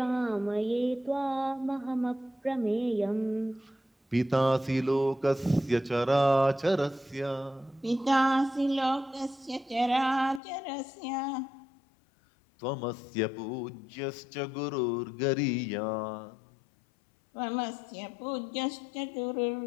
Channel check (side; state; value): right; drops out; at 10.4 s